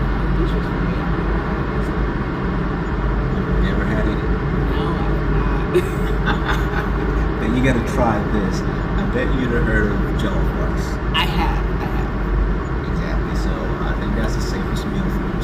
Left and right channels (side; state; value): both; identical; correlation 1.00